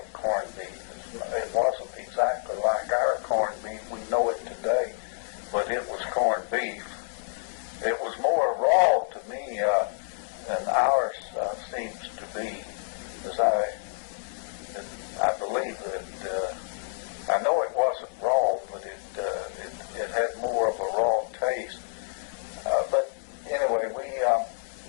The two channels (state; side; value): silent; right; digital silence